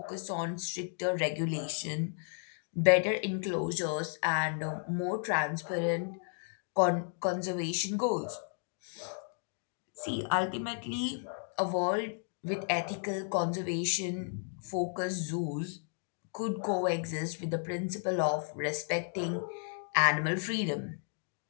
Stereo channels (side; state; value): right; silent; 55 dB below the other